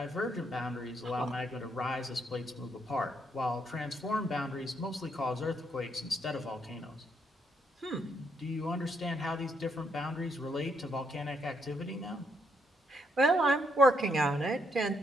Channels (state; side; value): normal; both; correlation 0.74